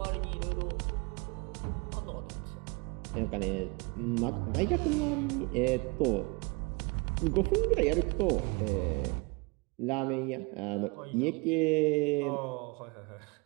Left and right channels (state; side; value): quieter; left; 28.4 dB